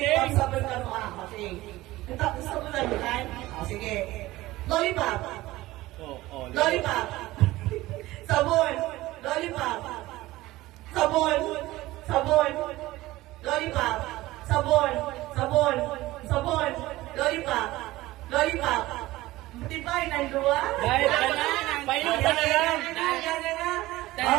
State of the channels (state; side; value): quieter; left; 17.9 dB